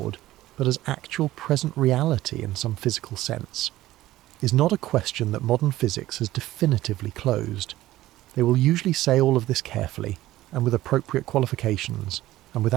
but as actual present reality in some physical sense, is not a question that modern physics has definitively closed. They will usually say all of this carefully, and with appropriate qualifications, and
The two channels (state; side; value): quieter; left; 15.6 dB